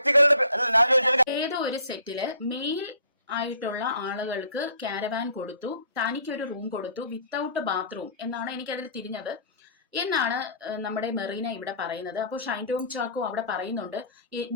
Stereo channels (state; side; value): inverted; both; correlation -0.51